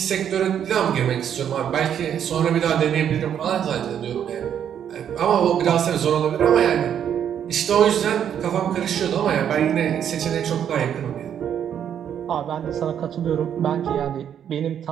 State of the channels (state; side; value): quieter; left; 9.1 dB